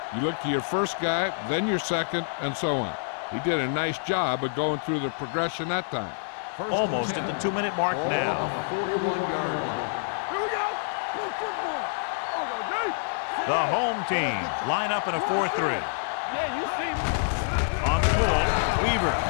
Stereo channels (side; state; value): right; silent; digital silence